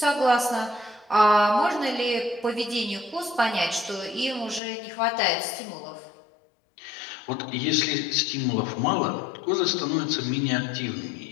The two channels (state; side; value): drops out; right; at 4.6 s